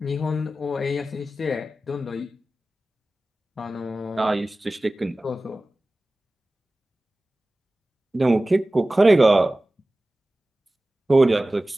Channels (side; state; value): both; normal; correlation 0.96